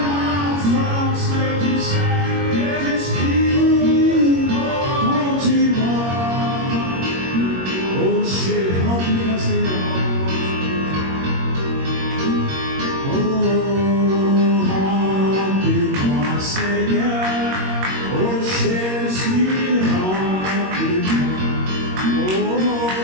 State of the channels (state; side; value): late; left; 21 ms